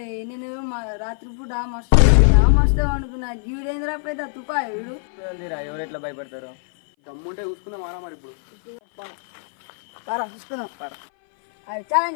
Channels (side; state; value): right; silent; 58 dB below the other